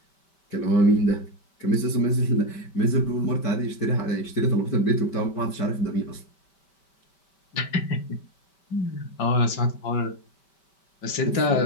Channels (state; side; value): late; right; 5.2 ms